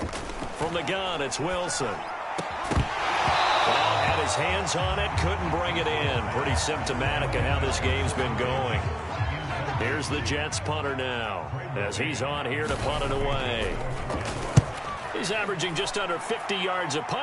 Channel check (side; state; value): both; identical; correlation 1.00